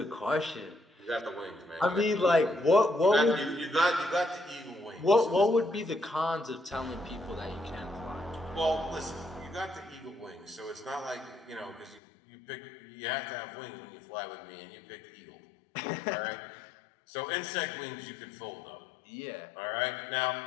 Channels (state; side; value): drops out; right; at 12.0 s